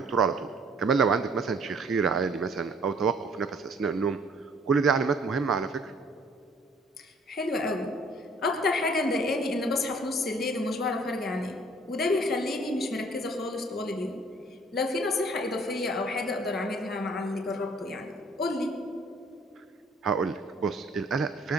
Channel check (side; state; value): both; normal; correlation 0.58